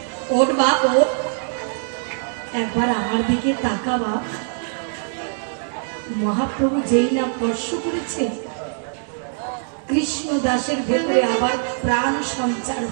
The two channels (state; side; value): silent; left; 64 dB below the other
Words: ওঠ বাপ, ওঠ, একবার আমার দিকে তাকা বাপ। মহাপ্রভু যেই না স্পর্শ করেছে, কৃষ্ণ দাসের ভেতরে আবার প্রাণ সঞ্চার